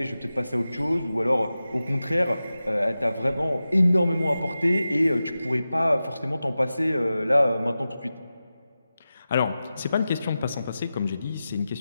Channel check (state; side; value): inverted; both; correlation -0.94